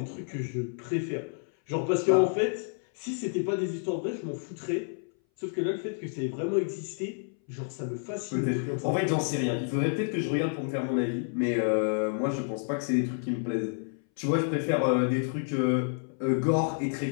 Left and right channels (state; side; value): silent; right; 58 dB below the other